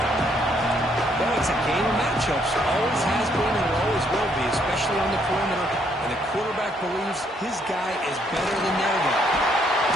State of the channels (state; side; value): normal; both; correlation 0.70